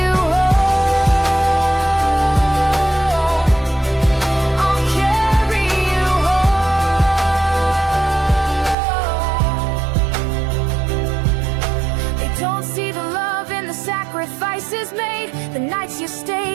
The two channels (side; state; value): left; drops out; at 8.8 s